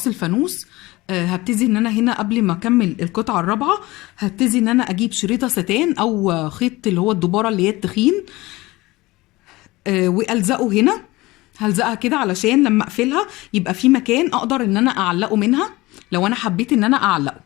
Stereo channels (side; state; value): right; quieter; 20.4 dB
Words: الفانوس. هبتدي ان انا هنا قبل ما اكمل القطعة الرابعة هبتدي ان انا اجيب شريطة ستان او خيط اللي هو الدبارة اللي هي التخين، والزقه هنا. هلزقها كده علشان لما اقفلها يبقى في مكان اقدر ان انا اعلقه منها لو انا حبيت ان انا اعلقه